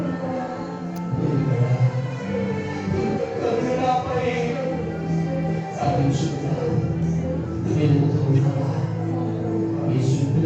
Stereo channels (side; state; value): both; identical; correlation 1.00